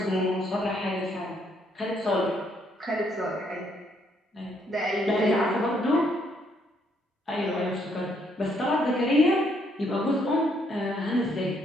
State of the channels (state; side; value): normal; both; correlation 0.71